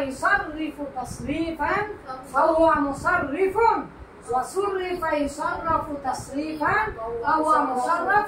ইসাররিফু তাসরিফান ফাহুয়া মুসাররিফুন, ওয়া সুররিফা ইসাররাফু তাসরিফান ফাহুয়া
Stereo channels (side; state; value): both; identical; correlation 1.00